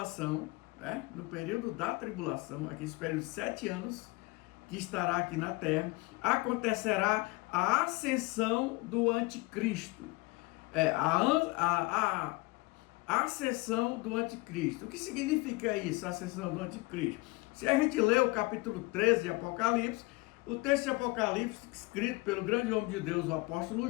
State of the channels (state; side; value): quieter; right; 23.6 dB